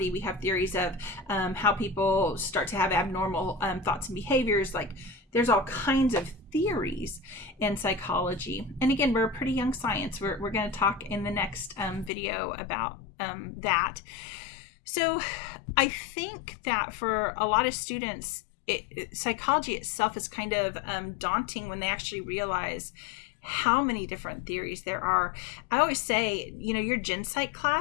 We have theories of how people start to have abnormal thoughts and behaviors. Like, there's all kinds of theories in psychology. And again, we're a pretty young science. We're going to talk in the next video about that. So I think that for a lot of students, psychology itself is kind of daunting when they actually realize how many different theories there are. I always say, your gen psych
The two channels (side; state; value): right; drops out; at 12.1 s